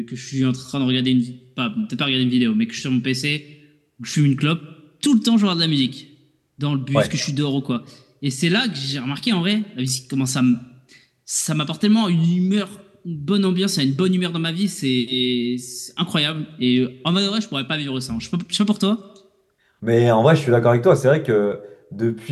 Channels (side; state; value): both; identical; correlation 1.00